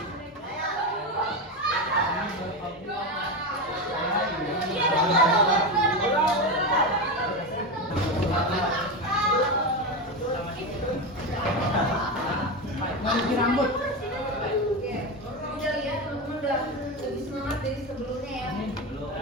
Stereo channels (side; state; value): both; normal; correlation 0.17